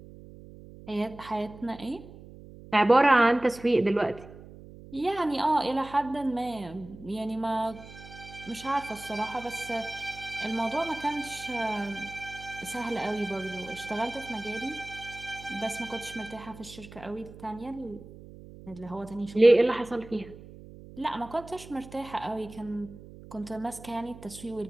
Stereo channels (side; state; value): right; noise; hum, 17 dB below the sound